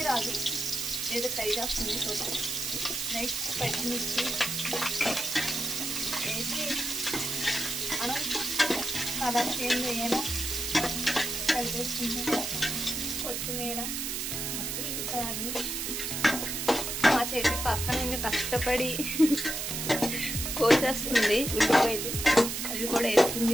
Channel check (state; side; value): noise; right; hiss, 3 dB below the sound